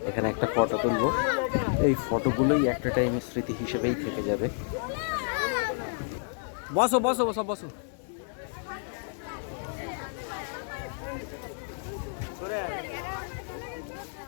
এখানে একটা ফটো তুলবো, এই ফটোগুলোই একটা টাইমের স্মৃতি হিসেবেই থেকে যাবে। বসো বসো বসো বসো।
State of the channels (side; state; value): right; silent; digital silence